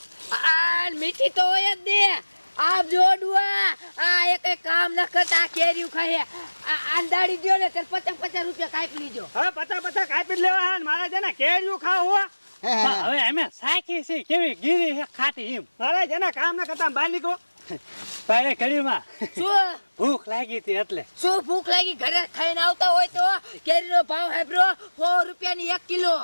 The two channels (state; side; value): inverted; both; correlation -1.00